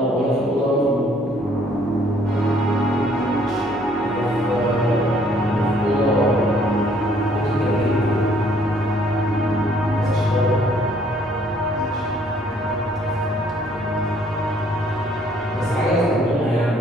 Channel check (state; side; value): normal; both; correlation 0.63